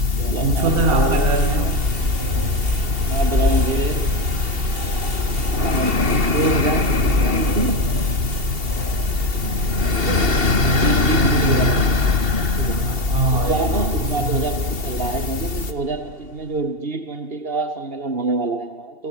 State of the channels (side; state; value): left; late; 2.7 ms